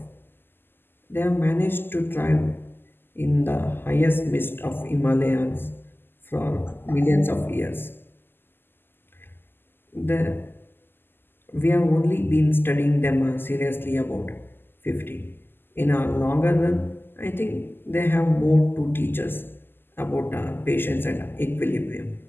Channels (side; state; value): right; late; 0.099 ms